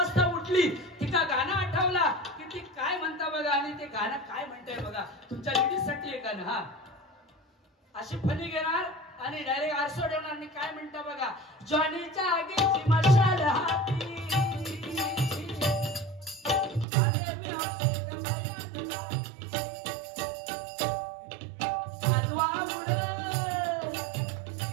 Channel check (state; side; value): drops out; left; at 16.9 s